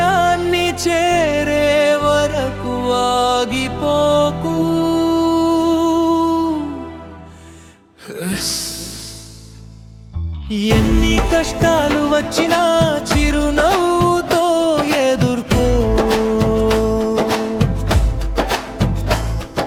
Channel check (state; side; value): identical; both; correlation 1.00